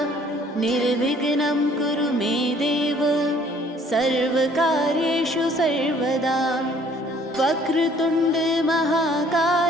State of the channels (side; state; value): both; normal; correlation 0.58